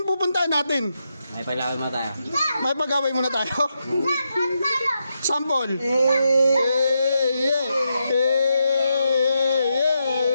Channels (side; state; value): both; inverted; correlation -0.84